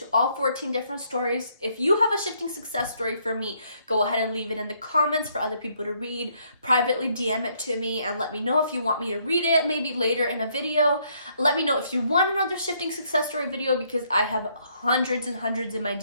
all 14 different stories. If you have a shifting success story for me, go ahead and leave it in the comments for other people to read. Privately DM it to me and let me know if you want me to read it, maybe later in a video. Let me know if you want another shifting success story video, because I have hundreds and hundreds in my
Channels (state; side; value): inverted; both; correlation -0.70